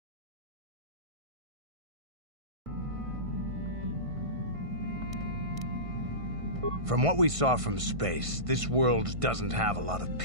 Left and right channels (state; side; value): late; left; 1.5 ms